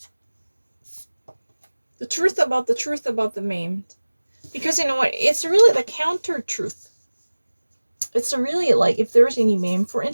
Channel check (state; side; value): inverted; both; correlation -1.00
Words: The truth about the meme. Because you know what? It's really the counter truth. it's really like if there's any meme, for